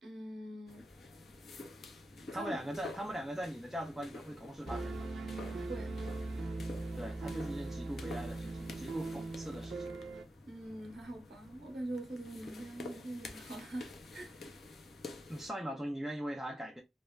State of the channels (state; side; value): normal; both; correlation 0.89